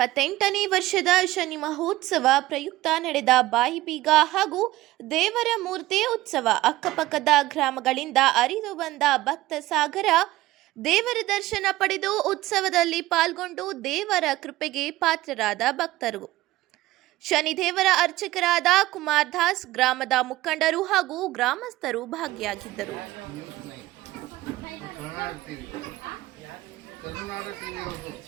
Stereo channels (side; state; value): left; quieter; 17.2 dB